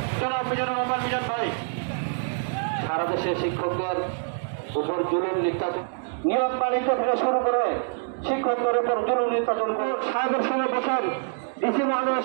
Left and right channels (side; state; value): left; silent; digital silence